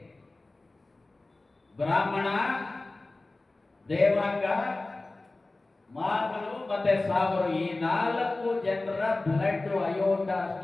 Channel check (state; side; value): quieter; right; 3.1 dB